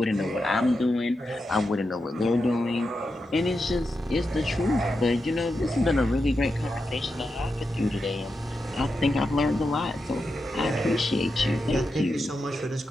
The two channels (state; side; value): normal; both; correlation 0.88